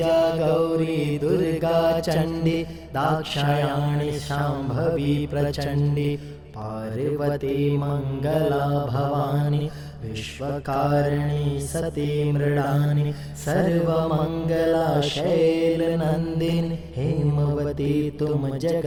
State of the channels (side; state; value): both; identical; correlation 1.00